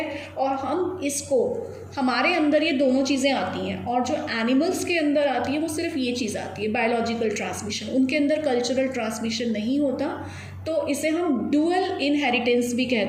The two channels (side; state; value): both; identical; correlation 1.00